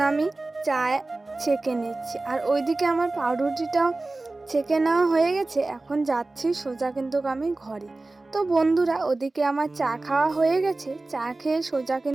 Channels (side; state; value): left; quieter; 3.1 dB